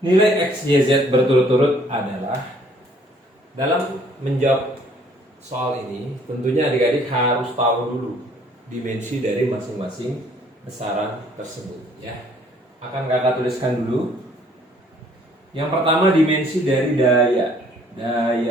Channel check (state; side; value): normal; both; correlation 0.60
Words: Nilai X, Y, Z berturut-turut adalah. Dalam menjawab soal ini tentunya adik-adik harus tahu dulu dimensi dari masing-masing besaran tersebut, ya. Akan kakak tuliskan dulu. Yang pertama dimensi dari daya.